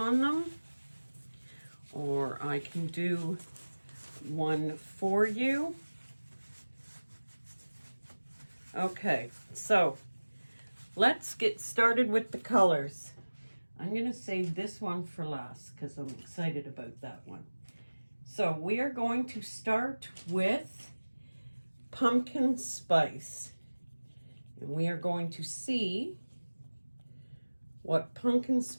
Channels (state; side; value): inverted; both; correlation -1.00